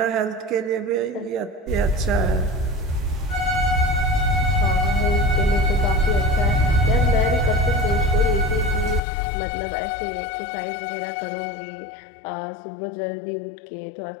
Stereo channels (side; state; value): right; drops out; at 9.0 s